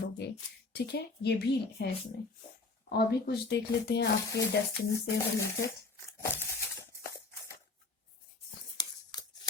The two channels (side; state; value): right; quieter; 3.7 dB